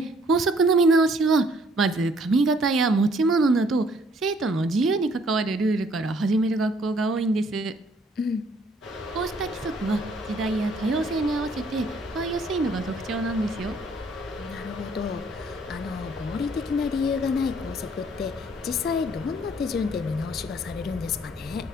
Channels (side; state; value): both; normal; correlation 0.62